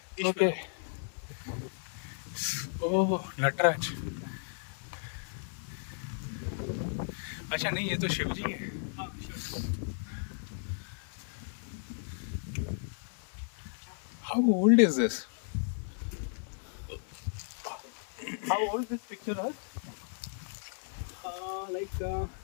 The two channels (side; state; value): right; silent; digital silence